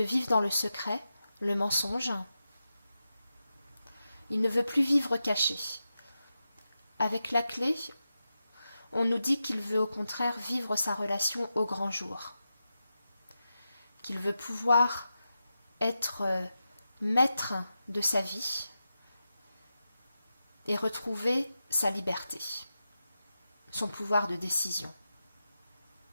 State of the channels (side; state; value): both; inverted; correlation -0.90